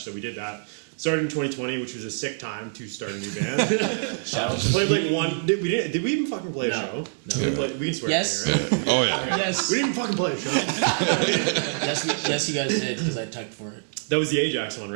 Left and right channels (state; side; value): silent; left; 62 dB below the other